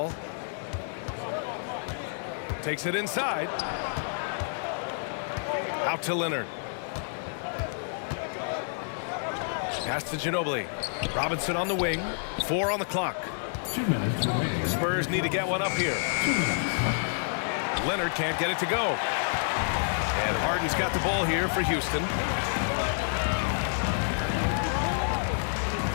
Takes it inside. Out to Leonard. Pass to Ginobili. Robinson on the wing. 4 on the clock. 2 minutes remaining. The Spurs need to get one up here. Leonard can't get it to go. And Harden's got the ball here for Houston.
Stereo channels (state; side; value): silent; right; digital silence